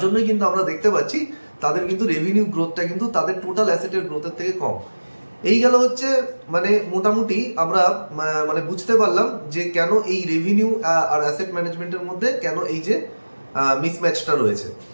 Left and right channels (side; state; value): both; inverted; correlation -1.00